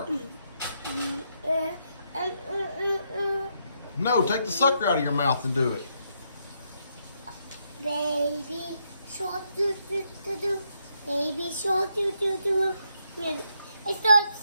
No, take the sucker out of your mouth and do it. Baby Shark, do do do do. Baby Shark, do do do. I stopped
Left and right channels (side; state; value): both; inverted; correlation -0.77